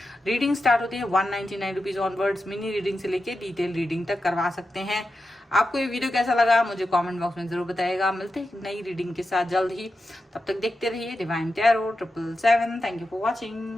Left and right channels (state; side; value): normal; both; correlation 0.89